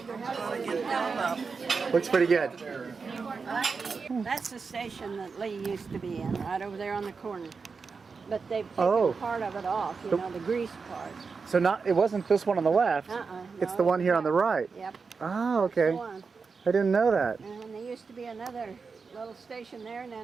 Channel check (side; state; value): left; quieter; 5.0 dB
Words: gonna get filled up. Looks pretty good. That's the station that Lee used to be in, right over there on the corner. But they've taken Oh. part of it off, you know, the grease part. So it wasn't this one on the left. It's No, the one here on the right. Yep. Oh, That's the okay. one. I didn't know that. And there used to be another little station there, and